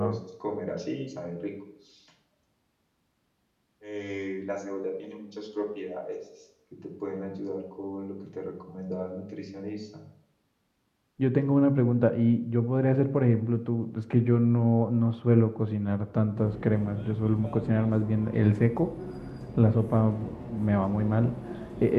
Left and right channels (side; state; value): both; identical; correlation 1.00